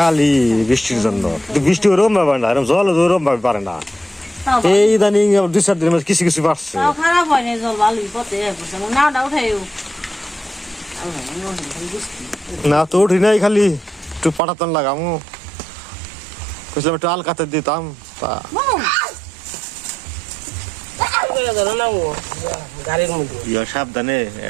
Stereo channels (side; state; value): left; drops out; at 14.4 s